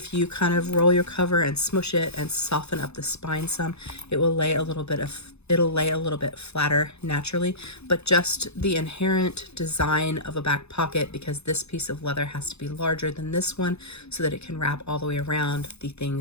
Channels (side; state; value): right; late; 0.80 ms